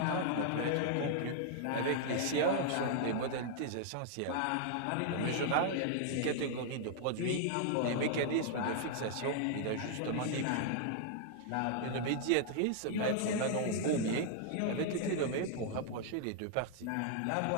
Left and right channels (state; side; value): different; both; correlation 0.00